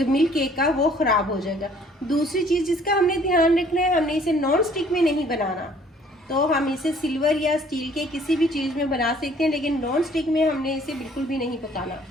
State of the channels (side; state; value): both; normal; correlation 0.58